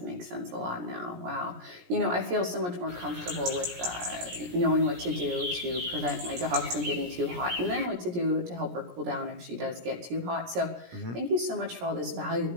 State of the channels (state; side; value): late; left; 17 ms